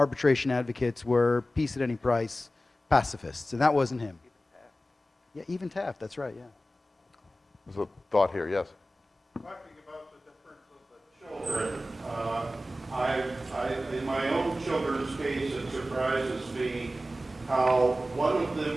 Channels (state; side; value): normal; both; correlation 0.95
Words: advocates were peace at any price pacifists, and that wasn't him. Yeah, even Taft, that's right, yeah. There's a thought here, yes. talking about the difference of the children, in my own children's case, it surprises me how one of